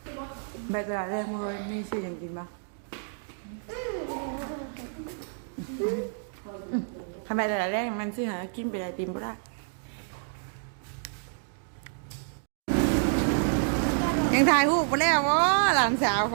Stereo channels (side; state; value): left; silent; digital silence